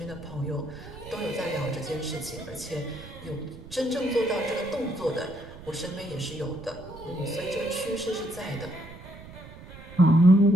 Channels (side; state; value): right; noise; rumble, 16 dB below the sound